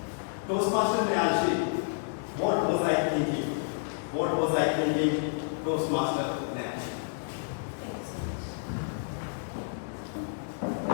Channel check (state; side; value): silent; right; digital silence